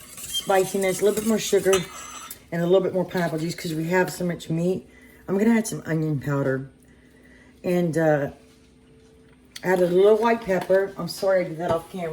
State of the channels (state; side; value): identical; both; correlation 1.00